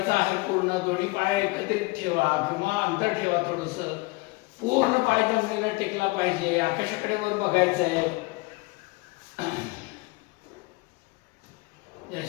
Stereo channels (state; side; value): quieter; right; 24.0 dB